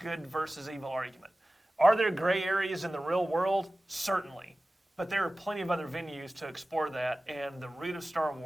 versus evil argument. Are there gray areas in the real world? Certainly, but there are plenty of other venues to explore that. And the root of Star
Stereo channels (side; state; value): both; normal; correlation 0.96